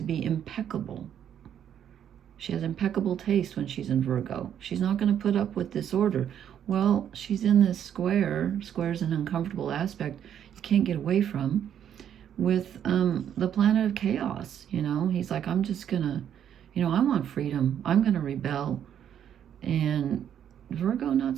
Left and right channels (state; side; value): quieter; left; 9.5 dB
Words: be impeccable. She has impeccable taste when she's in Virgo. She's not going to put up with disorder. Well, she's in this square. Square's an uncomfortable aspect you can't get away from, with the planet of chaos. He's like, I'm just going to, I want freedom. I'm going to rebel. And Virgo, not